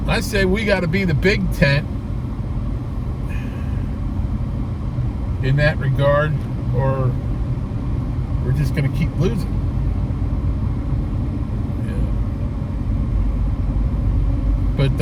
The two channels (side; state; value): both; identical; correlation 1.00